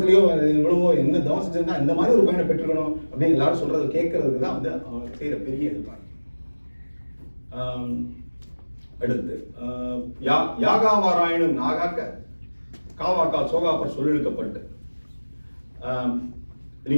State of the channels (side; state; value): both; inverted; correlation -1.00